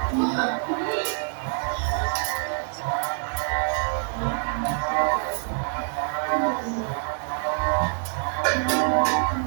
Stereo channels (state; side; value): silent; left; 55 dB below the other